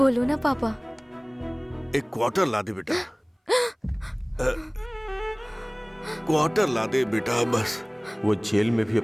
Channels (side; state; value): both; identical; correlation 1.00